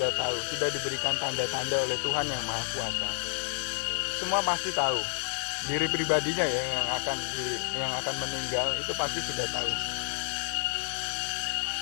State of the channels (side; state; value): right; silent; 58 dB below the other